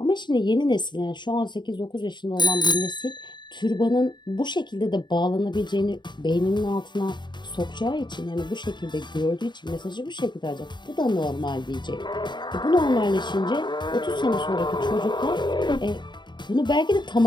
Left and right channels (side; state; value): right; late; 0.22 ms